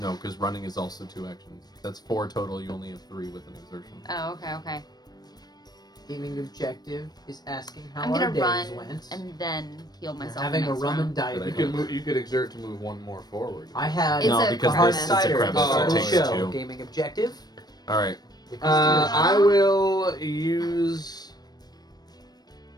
because running is also 2 actions. That's 4 total. You only have 3 with an exertion. Oh, okay. Gaming objective is asking how I'm our gonna days run went. and then heal We're myself. having a next rum round. and dive. Good You idea. could move. You could exert to move 1 more forward. I had It's No, a because hard crevice. it's a cider crevice. at the start of the It takes show. 2. Gaming objective. All right. I will use.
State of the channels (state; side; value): late; right; 0.19 ms